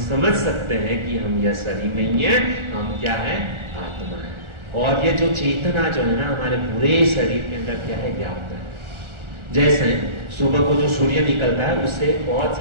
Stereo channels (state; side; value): late; left; 1.4 ms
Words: समझ सकते हैं कि हम यह शरीर नहीं है, हम क्या है? आत्मा है। और ये जो चेतना जो है ना हमारे पूरे शरीर के अंदर क्या है? व्याप्त है। जैसे सुबह को जो सूर्य निकलता है उससे बहुत